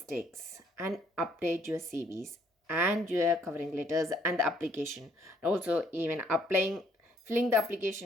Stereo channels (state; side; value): normal; both; correlation 0.65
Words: and update your CVs and your covering letters and the application. Also, even filling the